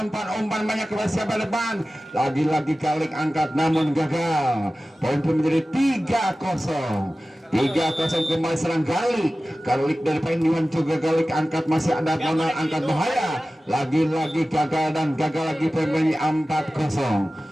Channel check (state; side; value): normal; both; correlation 0.96